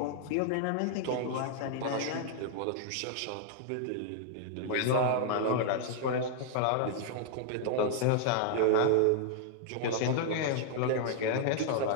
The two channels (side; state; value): both; different; correlation 0.00